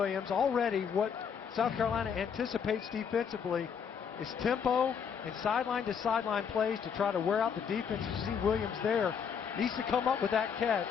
Already what South Carolina anticipates defensively is tempo and sideline-to-sideline plays to try to wear out the defense. You see Williams there. Needs to come up with that catch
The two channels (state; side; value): quieter; right; 7.0 dB